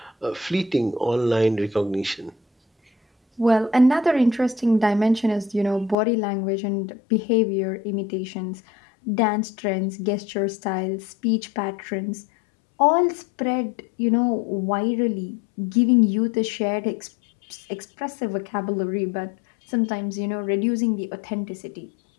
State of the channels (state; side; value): drops out; right; at 6.0 s